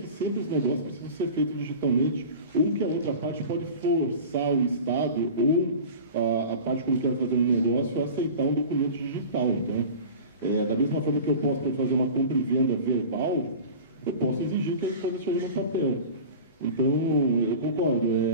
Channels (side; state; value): both; inverted; correlation -0.36